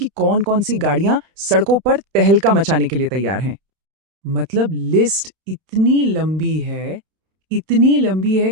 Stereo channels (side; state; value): left; late; 31 ms